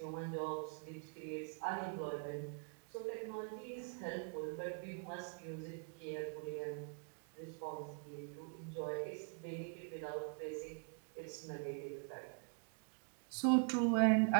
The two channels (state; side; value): quieter; left; 39.6 dB